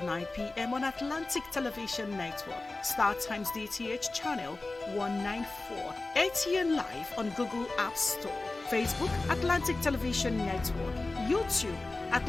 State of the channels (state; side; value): quieter; right; 3.2 dB